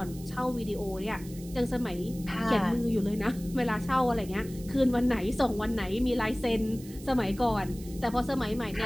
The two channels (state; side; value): noise; right; hiss, 19 dB below the sound